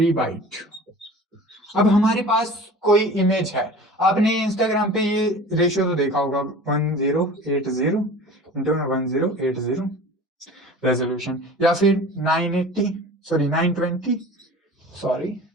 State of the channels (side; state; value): both; normal; correlation 0.40